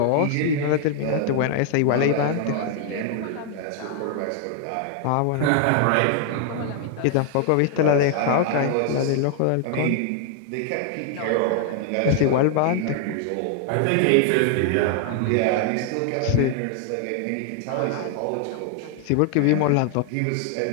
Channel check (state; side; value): different; both; correlation 0.00